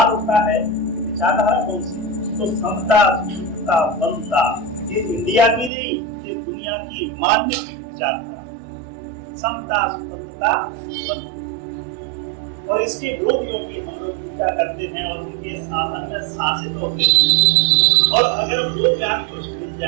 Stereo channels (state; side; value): drops out; left; at 5.7 s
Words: उठता है विचारधारा कौन सी? तो समता, सुचिता, बनता, ये इंडिया की नहीं, ये दुनिया की मान्य विचारधारा, समता, स्वतंत्रता, बनता। और इसके विरोधियों की हम लोग पूजा करते हैं और उनके शासन में शासित होते हैं। और अगर वो ज्ञान कुछ मिल